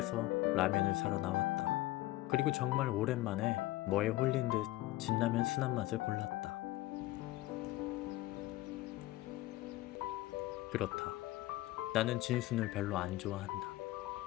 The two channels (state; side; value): quieter; right; 17.2 dB